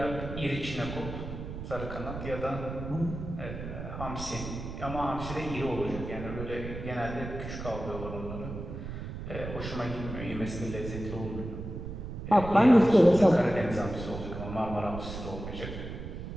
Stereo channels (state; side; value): noise; right; rumble, 8 dB below the sound